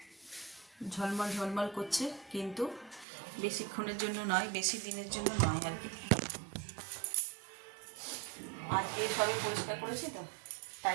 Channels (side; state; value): left; drops out; at 3.1 s